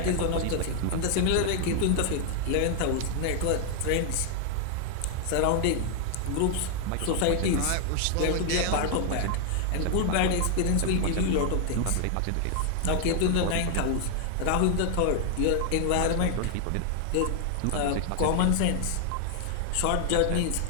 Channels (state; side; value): different; both; correlation 0.00